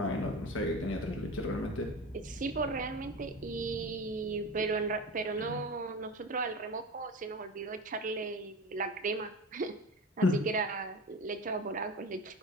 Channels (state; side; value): normal; both; correlation 0.29